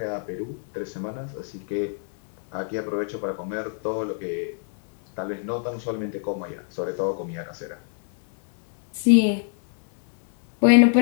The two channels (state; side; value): silent; right; 62 dB below the other